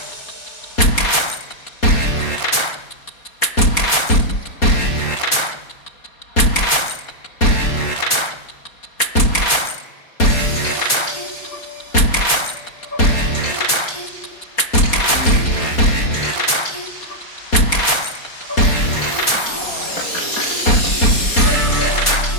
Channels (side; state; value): right; late; 4.2 ms